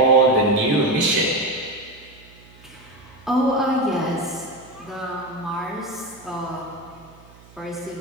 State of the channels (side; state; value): right; noise; hum, 24 dB below the sound